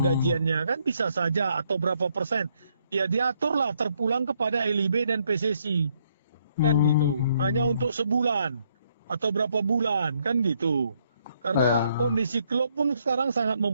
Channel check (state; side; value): inverted; both; correlation -0.72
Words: kan bisa saja, atau berapa persen. Ya diaturlah terpulang kepada LIB dan PSSI. Kan gitu. Hanya untuk sebulan atau berapa bulan kan gitu. Karena kondisi klub pun sekarang sangat